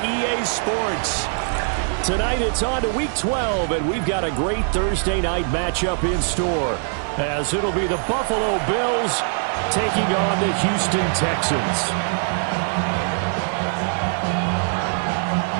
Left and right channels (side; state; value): left; silent; 56 dB below the other